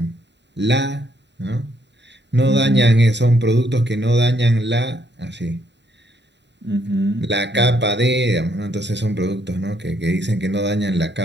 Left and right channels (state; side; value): late; left; 0.51 ms